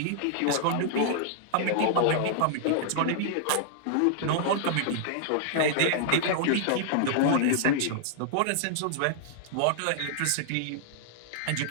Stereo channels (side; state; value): both; different; correlation -0.01